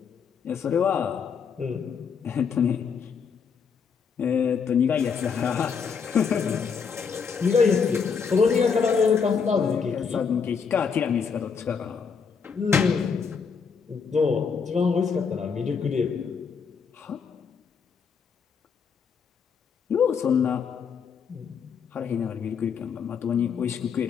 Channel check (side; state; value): right; quieter; 6.1 dB